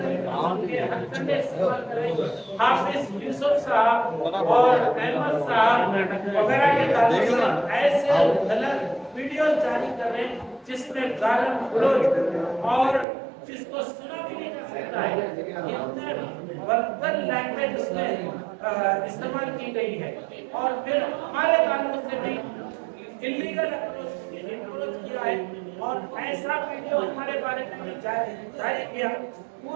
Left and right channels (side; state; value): left; drops out; at 13.1 s